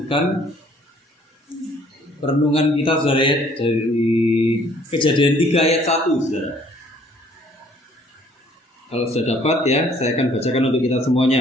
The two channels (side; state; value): both; normal; correlation 0.59